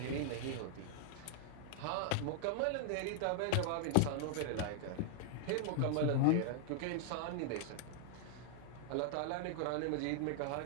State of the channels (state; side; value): different; both; correlation -0.01